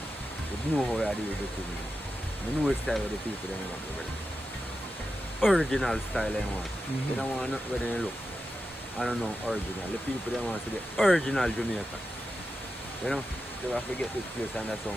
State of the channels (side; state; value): both; normal; correlation 0.90